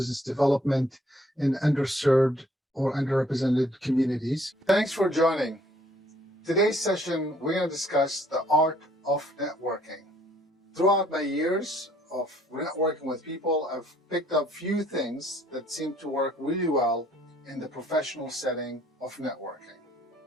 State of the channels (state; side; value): normal; both; correlation 0.63